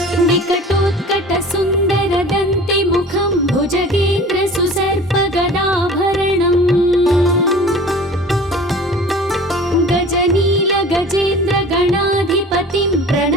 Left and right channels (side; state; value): both; normal; correlation 0.42